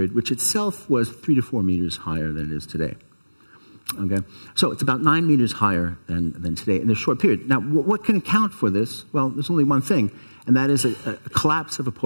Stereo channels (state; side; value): inverted; both; correlation -1.00